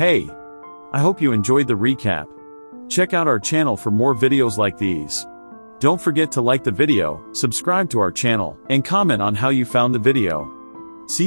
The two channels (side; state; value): both; inverted; correlation -1.00